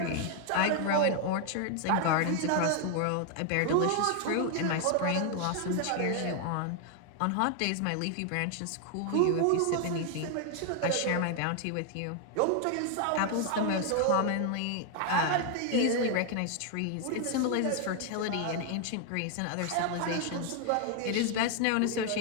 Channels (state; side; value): different; both; correlation 0.00